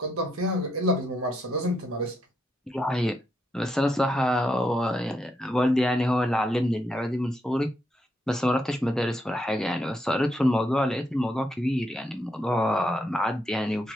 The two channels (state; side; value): normal; both; correlation 0.80